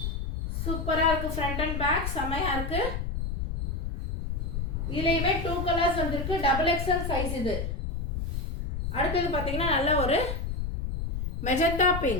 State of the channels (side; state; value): left; noise; rumble, 2 dB below the sound